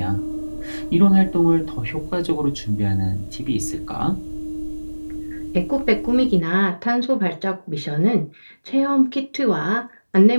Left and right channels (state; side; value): inverted; both; correlation -1.00